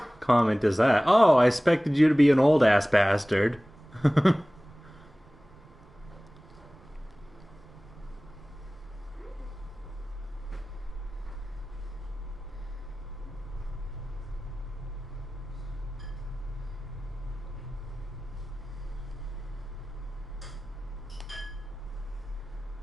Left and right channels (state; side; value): normal; both; correlation 0.98